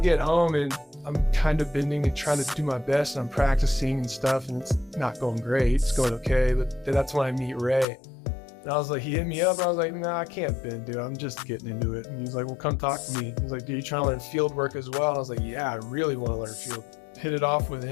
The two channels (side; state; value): right; drops out; at 7.9 s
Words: home and I'm kind of bending and trying to do my best. And I'm practicing and stuff. And it's not going great. It's going okay. But that's when I meet Ray. And I was like, he hit me up. I was like, nah, I can't bend, dude. I'm just getting into it. And he's like, well, come talk to me. He's like, dude, you trying to learn field work as well? And I was like, yeah, I really want to learn field. Hit it off with